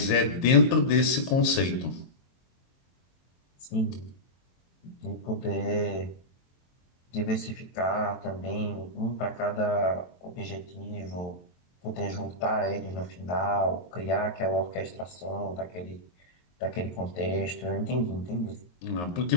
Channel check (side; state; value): right; late; 23 ms